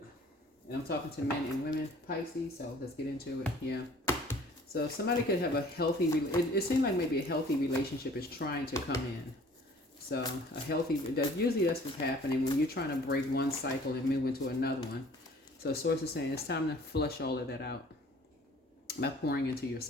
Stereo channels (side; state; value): both; normal; correlation 0.52